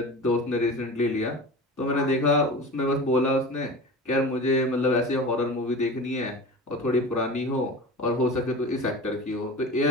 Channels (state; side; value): normal; both; correlation 0.33